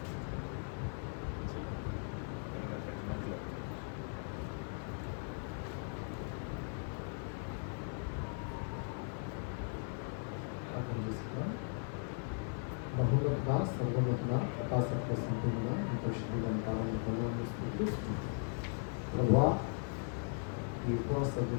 బహుమతిగా సర్వోన్నతిగా ప్రకాశత్వ సంపూర్ణ పరిశుద్ధమైన కాలంలో పొందాలని స్థితిస్తుంది. ప్రభువా, ఈ ఉపవాస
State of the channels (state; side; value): silent; right; 52 dB below the other